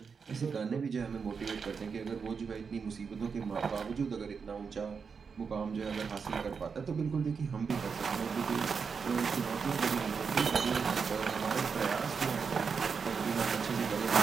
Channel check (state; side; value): quieter; left; 5.7 dB